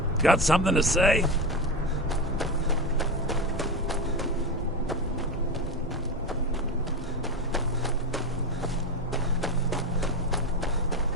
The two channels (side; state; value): both; normal; correlation 0.17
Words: Got something to say?